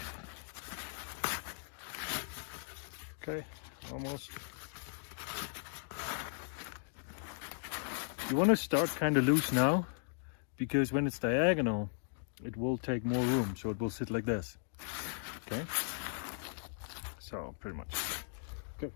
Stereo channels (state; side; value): silent; right; digital silence